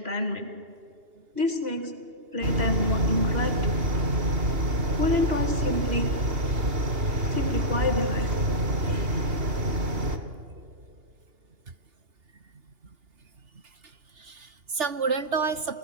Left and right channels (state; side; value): late; left; 2.8 ms